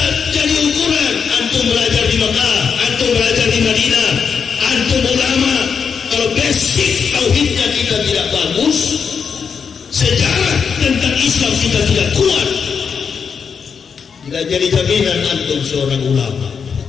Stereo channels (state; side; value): quieter; right; 6.3 dB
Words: jadi ukuran antum belajar di Mekah, antum belajar di Madinah, antum ulama. Kalau basic tauhidnya kita tidak bagus, sejarah tentang Islam kita tidak kuat, tidak jadi jaminan antum seorang ulama.